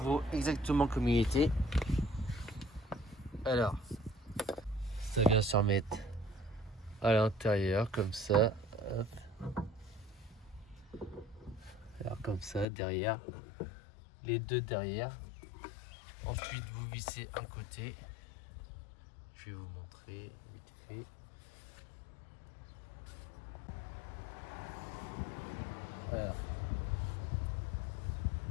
exactement comme il était. Alors, ça vient se remettre à l'intérieur comme ça. Hop. Alors comme ça, derrière, les deux derrière. Ensuite, vous vissez un côté. Je vais vous montrer vite fait. Voilà.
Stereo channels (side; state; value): right; drops out; at 12.7 s